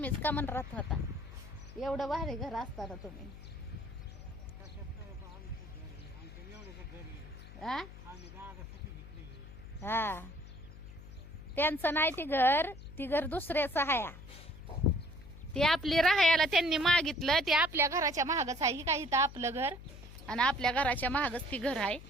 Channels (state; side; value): noise; left; hum, 15 dB below the sound